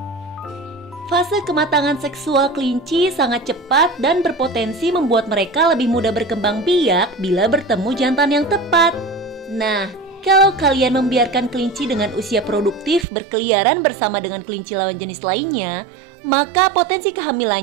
Fase kematangan seksual kelinci sangat cepat dan berpotensi membuat mereka lebih mudah berkembang biak bila bertemu jantan yang tepat. Nah, kalau kalian membiarkan kelinci dengan usia produktif berkeliaran bersama dengan kelinci lawan jenis lainnya, maka potensi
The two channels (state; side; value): drops out; left; at 13.1 s